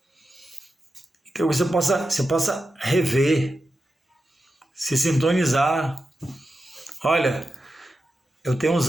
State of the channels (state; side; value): normal; both; correlation 0.90